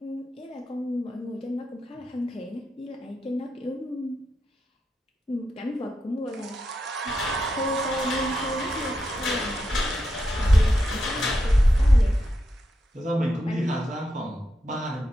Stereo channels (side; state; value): both; normal; correlation 0.86